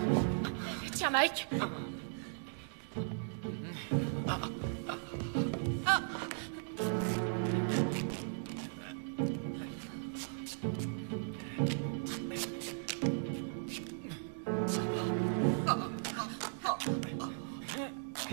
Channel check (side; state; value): left; silent; digital silence